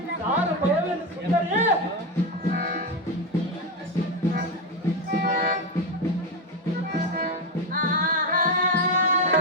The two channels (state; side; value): normal; both; correlation 0.11